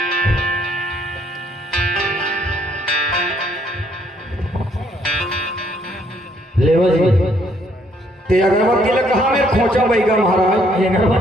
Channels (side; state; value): both; normal; correlation 0.67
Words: लेवा जी। ते अगरबत्ती ला कहाँ में खोचा बैगम महाराज? ये